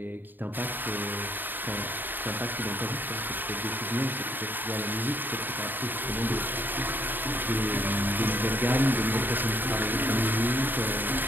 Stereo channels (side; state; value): left; late; 0.092 ms